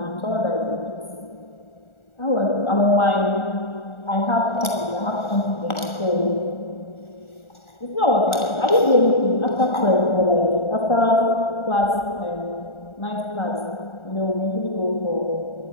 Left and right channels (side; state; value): right; late; 1.4 ms